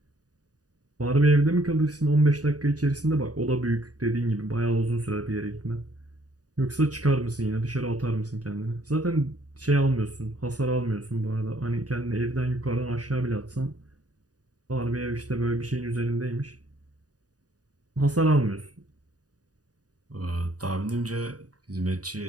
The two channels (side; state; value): left; late; 0.68 ms